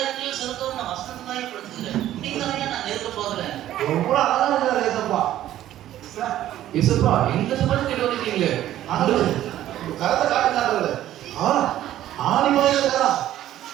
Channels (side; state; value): left; quieter; 12.9 dB